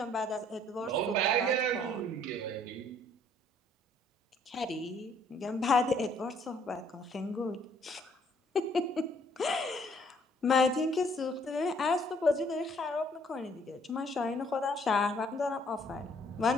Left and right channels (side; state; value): both; normal; correlation 0.63